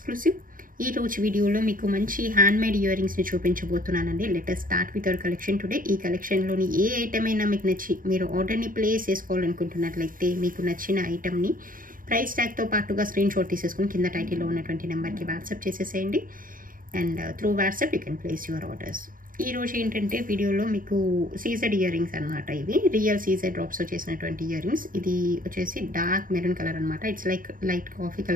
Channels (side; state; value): left; late; 0.40 ms